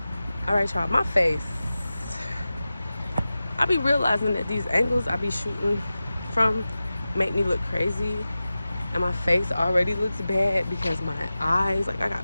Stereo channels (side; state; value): both; inverted; correlation -0.95